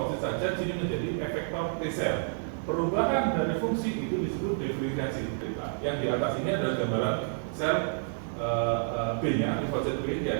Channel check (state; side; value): silent; left; digital silence